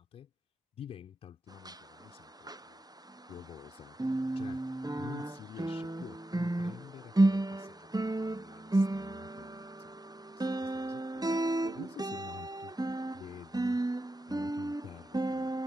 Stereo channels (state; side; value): normal; both; correlation 0.90